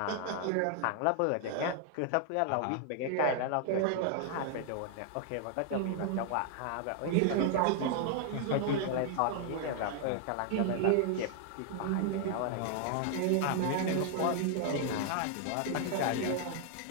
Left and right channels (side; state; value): both; different; correlation 0.00